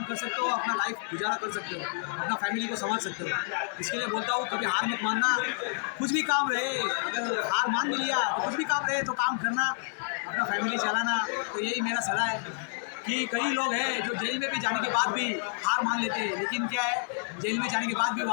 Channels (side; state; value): right; silent; 58 dB below the other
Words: कर सकते हो, अपना लाइफ गुजारा कर सकते हो, अपना फैमिली को संभाल सकते हो। इसके लिए बोलता हूँ कभी हार मत मानना। कुछ भी काम रहे, अगर हार मान भी लिया तो कुछ भी काम रहे तो काम करना, अपना फैमिली चलाना। तो यही मेरा सलाह है कि कई लोग हैं जो जेल में भी जाने के बाद भी हार मान लेते हैं, लेकिन क्या है, जेल में जाने के बाद भी